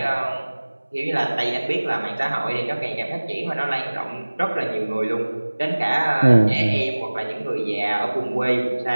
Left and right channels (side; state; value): both; inverted; correlation -1.00